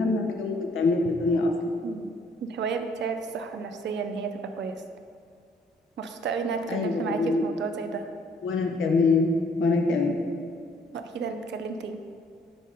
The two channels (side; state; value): both; normal; correlation 0.62